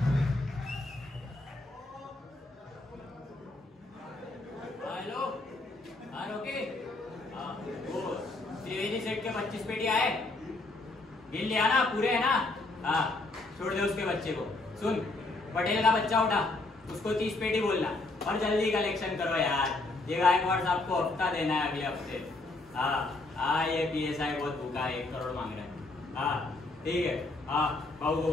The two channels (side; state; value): right; quieter; 3.1 dB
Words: हेलो, हाँ रोके, वो त्रिवेदी सेठ के 25 पेटी आए, गिन लिया ना, पूरे है ना? हाँ, छोड़ दे उसके बच्चे को। सुन, पटेल का बच्चा उठा, उसको 30 पेटी बोलना और जल्दी कलेक्शन करो यार। ये गायकवाड़ साहब को हफ्ता देना है अगले हफ्ते। हाँ, ये PSI बहुत भूखा है, 1 करोड़ मांग रहे हैं। हाँ ठीक है, हाँ बहू को